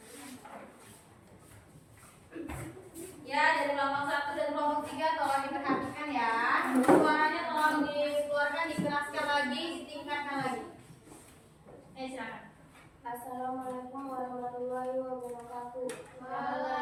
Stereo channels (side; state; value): both; identical; correlation 1.00